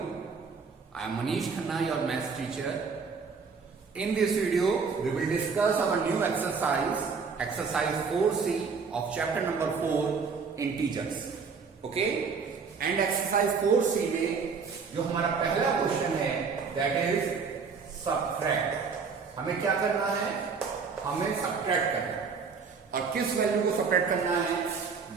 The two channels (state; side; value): quieter; left; 5.4 dB